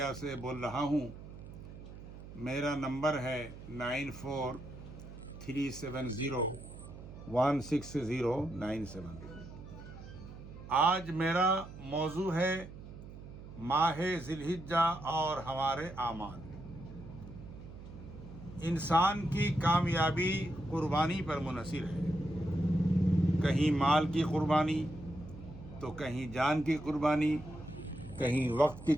سے بول رہا ہوں۔ میرا نمبر ہے 9437016097۔ آج میرا موضوع ہے ماہ ذی الحجہ اور ہمارے اعمال۔ انسان کی کامیابی قربانی پر منحصر ہے، کہیں مال کی قربانی تو کہیں جان کی قربانی، کہیں وقت کی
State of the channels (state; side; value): noise; right; hum, 14 dB below the sound